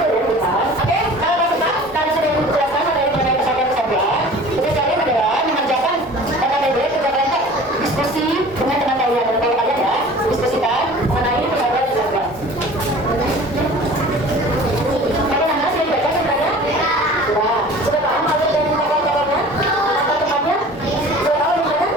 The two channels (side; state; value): both; normal; correlation 0.43